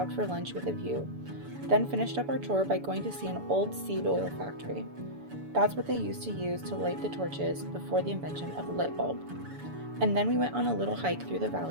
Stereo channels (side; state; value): left; late; 7.0 ms